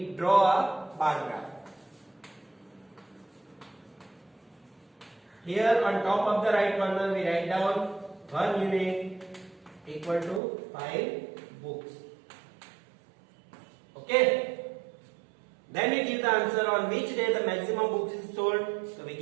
draw a bar graph. Here on top of the right corner we write down 1 unit equal to 5 books. Okay. Then we give the answer on which day the maximum books is sold. So we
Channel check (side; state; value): left; drops out; at 10.4 s